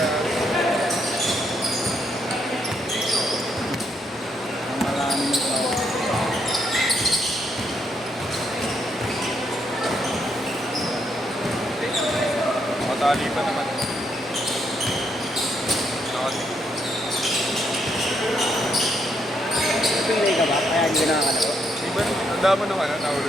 Ang maraming tao. Matali pa naman. Nakati. Pilay ka ba? Kaya hindi ka nakakalaro? Iba, ang dama nung ano,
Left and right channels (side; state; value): both; normal; correlation 0.76